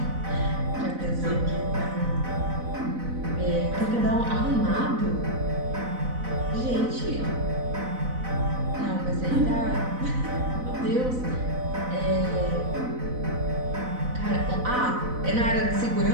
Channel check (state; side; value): late; left; 4.0 ms